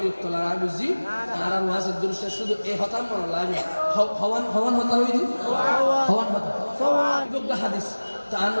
লাগা বুঝি আর ওয়াজের দৃশ্য শুধু এই হতাম মনে লাগে হওয়ান হওয়ান হতা হইনি হওয়ান হতা হাদিস তার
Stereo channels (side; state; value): both; inverted; correlation -1.00